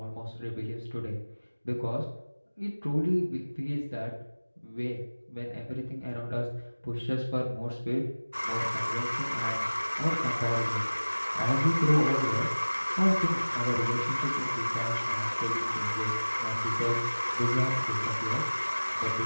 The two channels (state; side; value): inverted; both; correlation -1.00